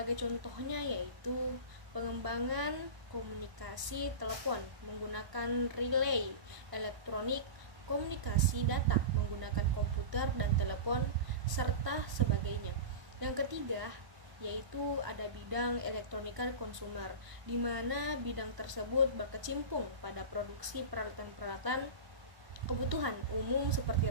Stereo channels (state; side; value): late; left; 1.0 ms